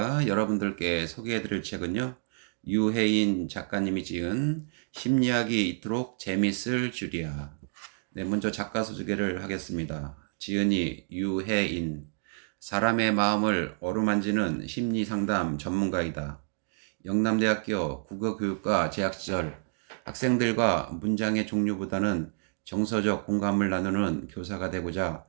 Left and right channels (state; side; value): silent; left; digital silence